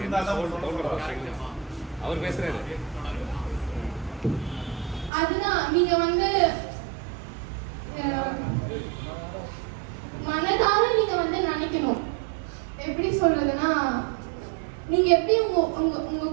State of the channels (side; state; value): left; drops out; at 5.1 s